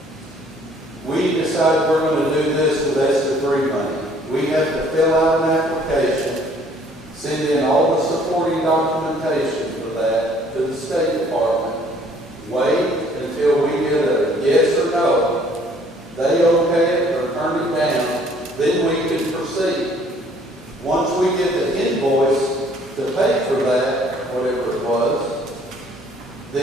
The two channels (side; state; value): both; normal; correlation 0.59